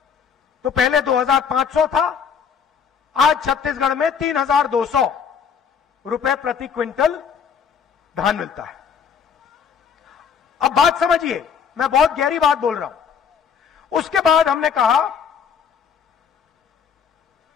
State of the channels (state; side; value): quieter; right; 6.9 dB